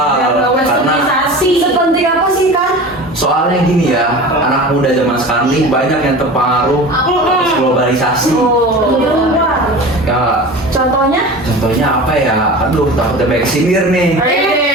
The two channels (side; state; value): both; normal; correlation 0.34